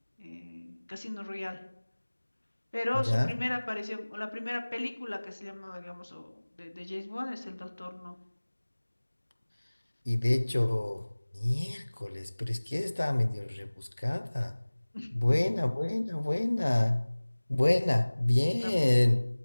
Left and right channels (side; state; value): both; inverted; correlation -1.00